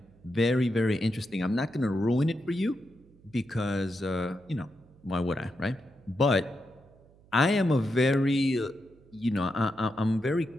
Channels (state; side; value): noise; right; hum, 27 dB below the sound